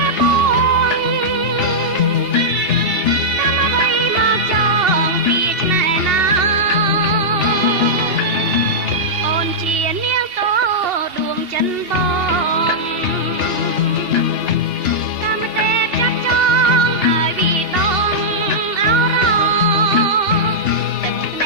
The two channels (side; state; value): left; late; 3.4 ms